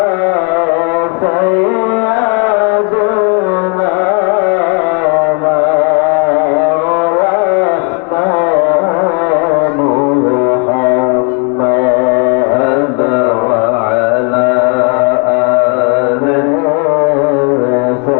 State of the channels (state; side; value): quieter; right; 34.7 dB